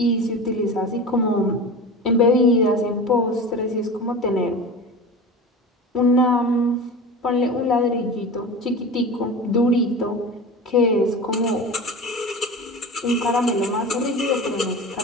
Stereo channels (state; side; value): normal; both; correlation 0.31